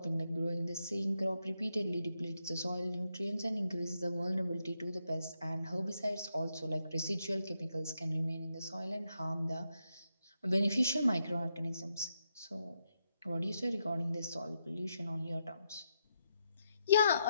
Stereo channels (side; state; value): both; inverted; correlation -0.82